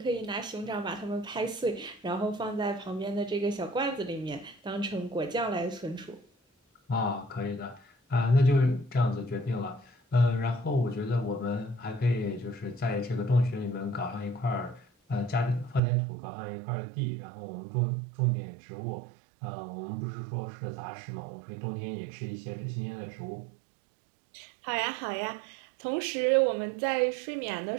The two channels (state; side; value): drops out; left; at 15.8 s